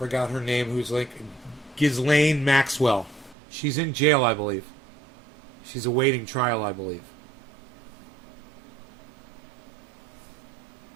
her name, who's like Ghislaine Maxwell? She's in jail, I believe. She's awaiting trial, I believe.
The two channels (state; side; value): drops out; left; at 3.4 s